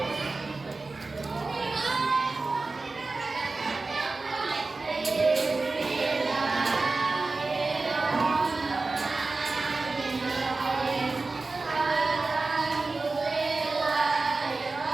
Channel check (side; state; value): left; quieter; 3.6 dB